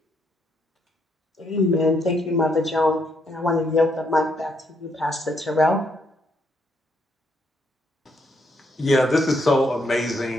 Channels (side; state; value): both; normal; correlation 0.74